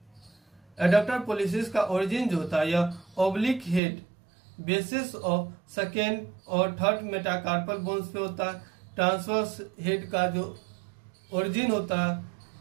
पोलिसिस का ओरिजिन जो होता है यह oblique head basis of second और थर्ड मेटाकार्पल बोन्स पे होता है। ट्रांसवर्स हेड का जो ओरिजिन होता है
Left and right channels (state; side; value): drops out; left; at 3.8 s